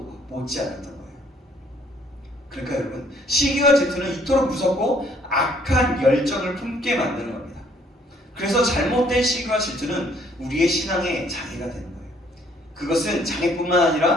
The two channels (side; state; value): both; normal; correlation 0.63